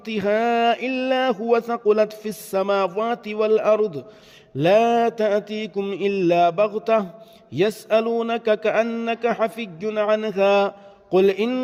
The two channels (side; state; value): both; identical; correlation 1.00